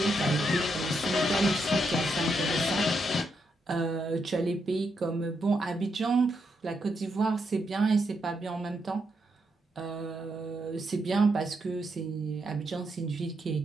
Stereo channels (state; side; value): normal; both; correlation 0.81